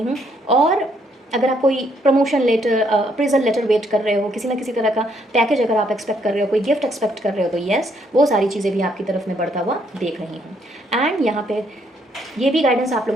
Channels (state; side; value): normal; both; correlation 0.70